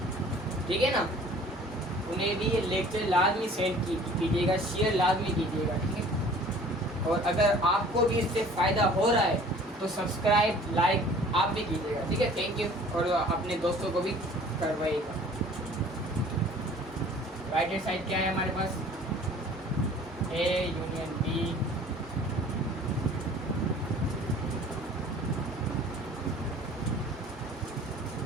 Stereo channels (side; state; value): both; normal; correlation 0.49